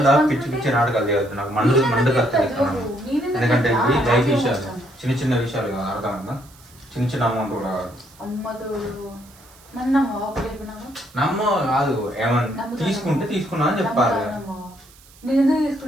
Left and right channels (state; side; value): noise; right; hiss, 25 dB below the sound